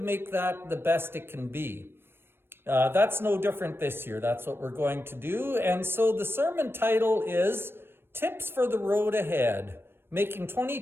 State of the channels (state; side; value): late; left; 0.11 ms